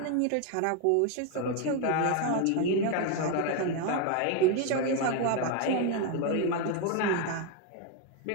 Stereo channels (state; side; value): different; both; correlation 0.01